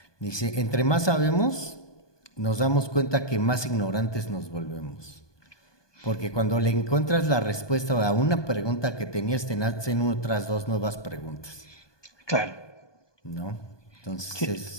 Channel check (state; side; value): late; right; 1.2 ms